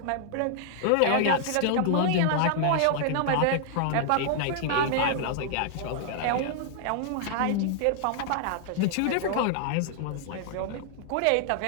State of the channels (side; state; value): both; different; correlation -0.01